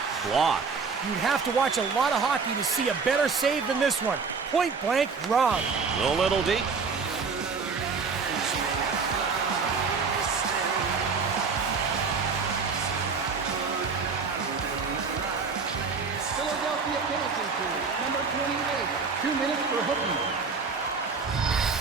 Blocked. You'd have to watch a lot of hockey to see a better save than this one. Point blank wrong. A little deep. Philadelphia penalty kill, number 28, 2 minutes for hooking.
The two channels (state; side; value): quieter; left; 5.0 dB